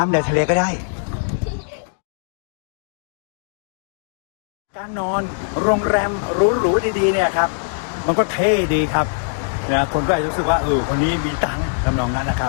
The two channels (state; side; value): silent; right; digital silence